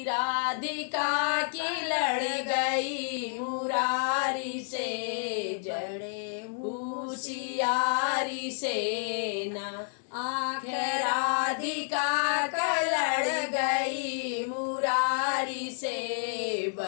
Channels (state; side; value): silent; right; digital silence